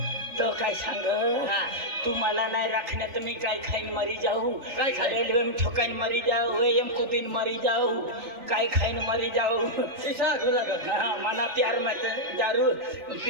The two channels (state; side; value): late; left; 3.4 ms